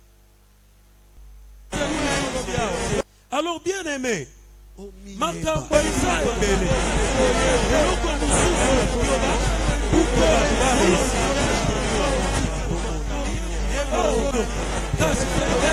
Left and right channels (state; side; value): identical; both; correlation 1.00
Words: alors bien aimé makambo eza ebele eloko mosusu yoba